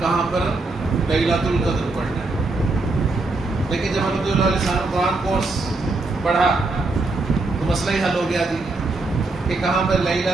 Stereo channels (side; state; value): left; quieter; 3.3 dB